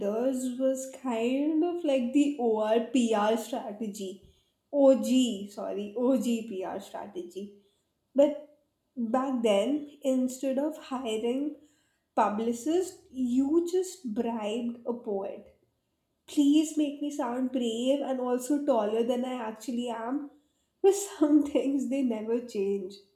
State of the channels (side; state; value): both; identical; correlation 1.00